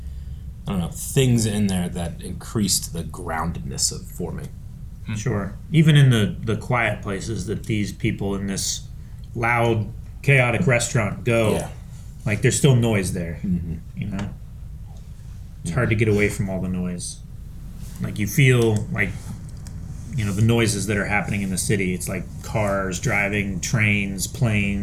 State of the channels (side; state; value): both; identical; correlation 1.00